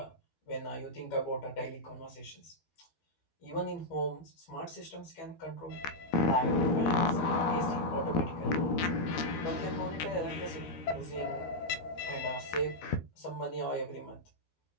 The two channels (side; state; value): right; late; 12 ms